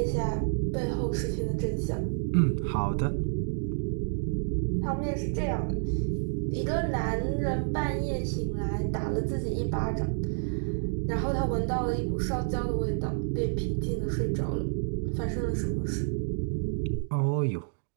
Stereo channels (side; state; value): left; silent; digital silence